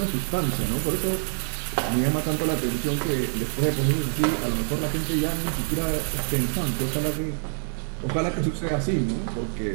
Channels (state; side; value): silent; left; 61 dB below the other